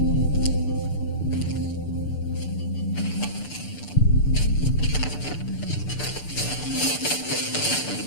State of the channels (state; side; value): late; right; 6.8 ms